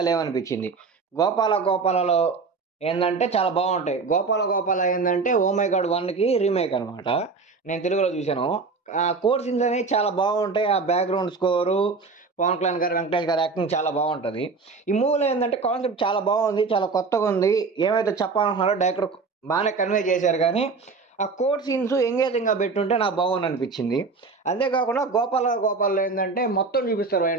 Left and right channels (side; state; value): left; quieter; 4.4 dB